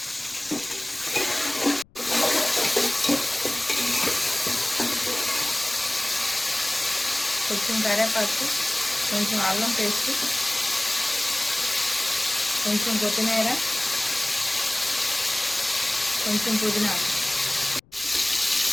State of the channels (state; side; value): noise; left; rumble, 30 dB below the sound